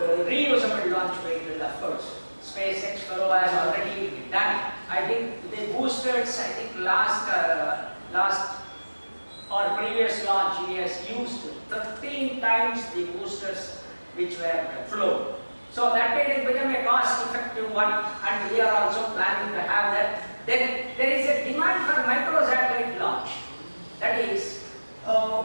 reusable launch vehicle, of course. SpaceX has already done. I think the boosters, I think last or previous launch, he has used 13 times the boosters which were flown. So that way it became a cost-effective one, and we are also planning to have that. Then there is a demand for micro-satellite launch. That is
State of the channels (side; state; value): both; inverted; correlation -1.00